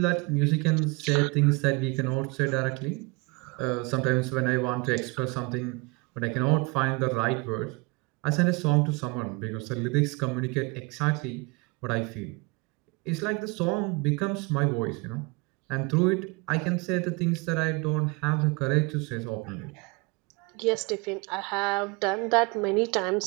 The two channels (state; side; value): quieter; left; 28.1 dB